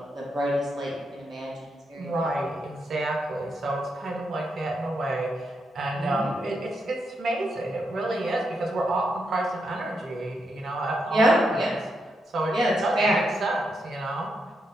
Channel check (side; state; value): both; normal; correlation 0.82